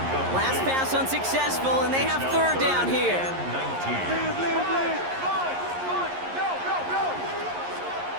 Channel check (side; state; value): left; late; 11 ms